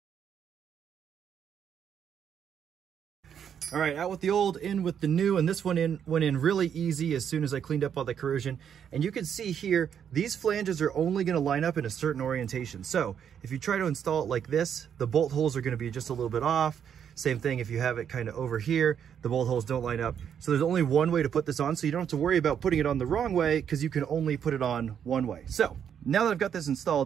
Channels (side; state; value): left; quieter; 8.4 dB